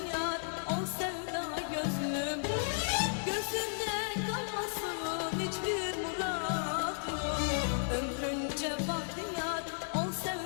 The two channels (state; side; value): silent; right; digital silence